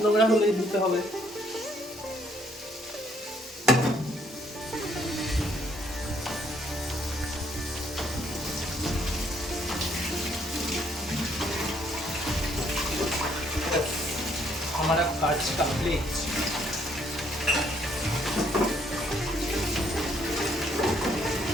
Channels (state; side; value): normal; both; correlation 0.67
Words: নোংরা হলেই ধুতে হবে। हमारा काज कंप्लीट।